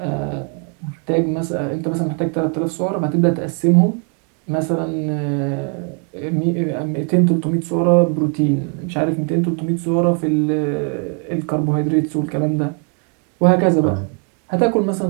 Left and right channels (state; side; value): quieter; left; 39.6 dB